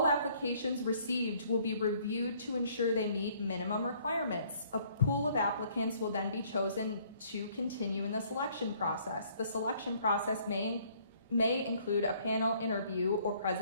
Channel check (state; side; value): inverted; both; correlation -0.62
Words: applications received will be reviewed to ensure they meet minimum requirements. A pool of applicants will then be chosen to continue in the selection process. The selection process may include a panel interview or